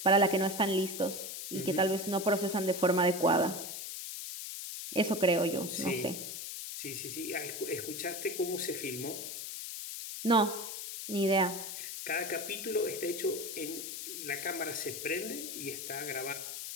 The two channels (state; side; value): noise; left; hiss, 7 dB below the sound